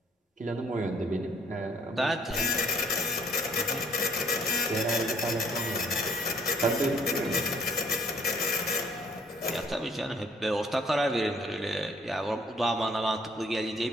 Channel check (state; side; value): normal; both; correlation 0.62